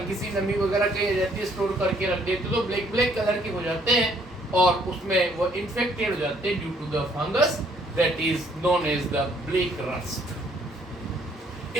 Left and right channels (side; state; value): both; normal; correlation 0.65